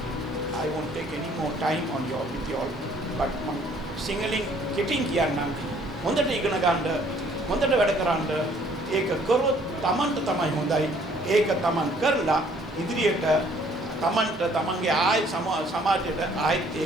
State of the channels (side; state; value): both; normal; correlation 0.60